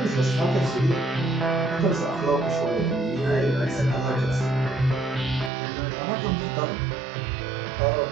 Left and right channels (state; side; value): drops out; left; at 5.5 s